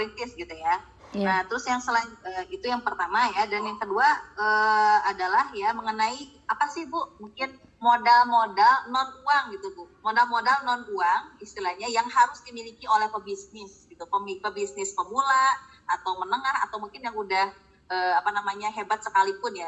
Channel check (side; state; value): both; identical; correlation 1.00